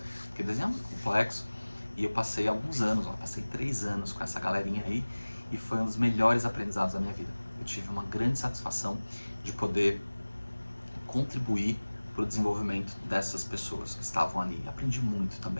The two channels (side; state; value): both; inverted; correlation -1.00